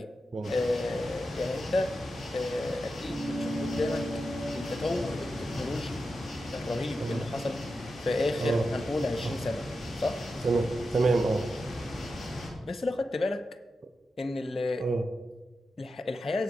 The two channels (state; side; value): normal; both; correlation 0.89